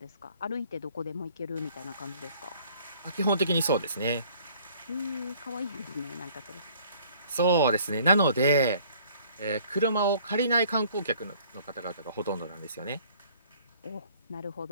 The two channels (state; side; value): inverted; both; correlation -0.56